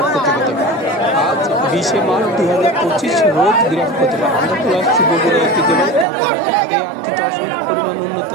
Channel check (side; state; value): left; drops out; at 6.1 s